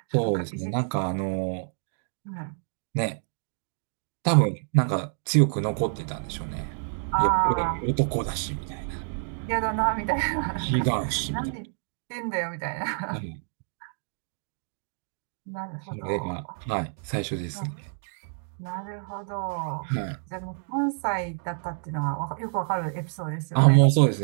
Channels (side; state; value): left; silent; 59 dB below the other